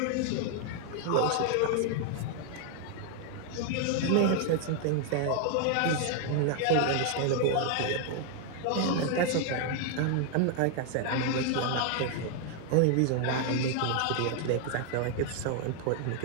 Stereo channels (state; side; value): different; both; correlation 0.00